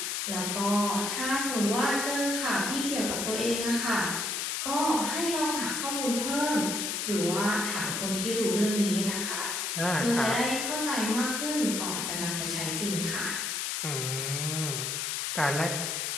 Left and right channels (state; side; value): noise; left; hiss, 1 dB below the sound